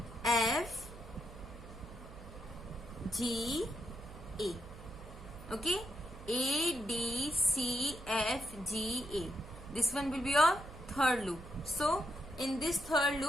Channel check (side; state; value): right; noise; hum, 15 dB below the sound